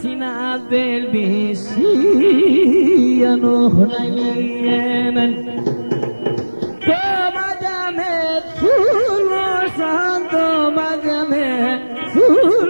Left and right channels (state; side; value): inverted; both; correlation -1.00